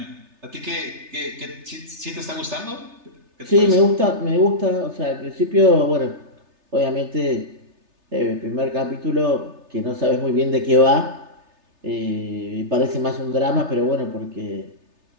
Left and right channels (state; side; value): late; left; 3.3 ms